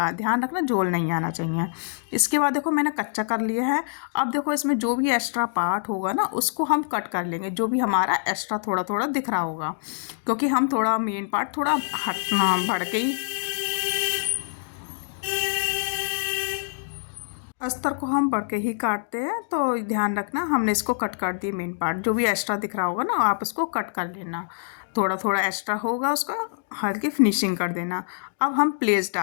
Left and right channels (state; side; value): silent; right; digital silence